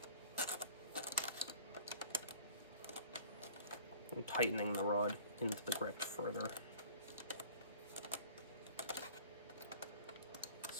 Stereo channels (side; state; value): both; inverted; correlation -0.46